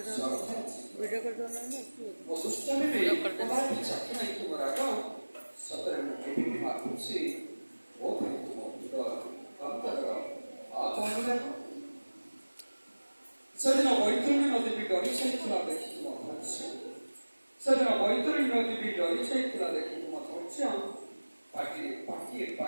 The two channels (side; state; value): both; inverted; correlation -1.00